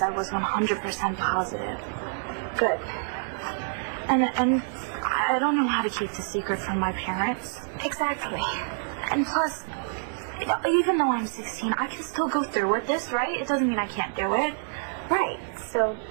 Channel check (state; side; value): silent; left; digital silence